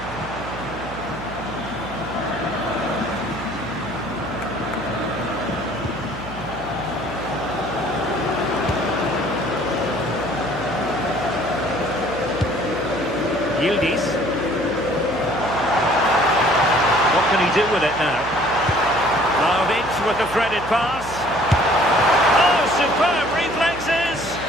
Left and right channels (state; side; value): noise; right; hum, 14 dB below the sound